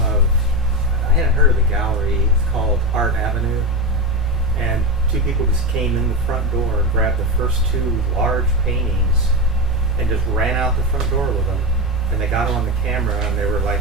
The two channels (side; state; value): both; normal; correlation 0.17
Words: of, I hadn't heard of the gallery, it's called Art Avenue, and 2 people just came in the front door and grabbed the first 2 large paintings and just ran out the front door with them. And they got them on the camera and they were